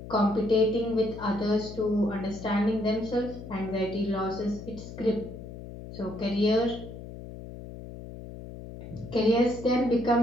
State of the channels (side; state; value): left; noise; hum, 12 dB below the sound